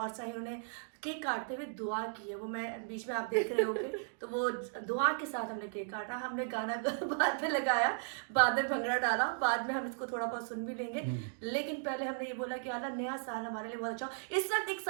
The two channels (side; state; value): left; silent; digital silence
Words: से हैं, उन्होंने केक काटते हुए दुआ की है, वो मैं बीच में आप देख रहे होंगे, तो वो दुआ के साथ हमने केक काटा। हमने गाना बाद में लगाया, बाद में भंगड़ा डाला, बाद में हम इसको थोड़ा बहुत सुन भी लेंगे, लेकिन पहले हमने ये बोला कि अल्लाह नया साल हमारे लिए बहुत अच्छा हो। इस वक्त एक